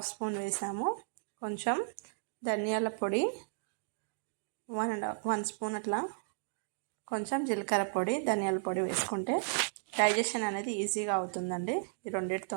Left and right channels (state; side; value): silent; left; digital silence